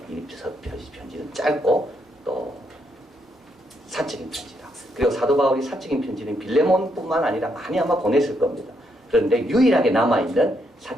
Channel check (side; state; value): both; normal; correlation 0.77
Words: 이 편지는 짧고 또 사적인 편지다. 그리고 사도 바울이 사적인 편지는 빌레몬뿐만 아니라 많이 아마 보냈을 겁니다. 그런데 유일하게 남아있는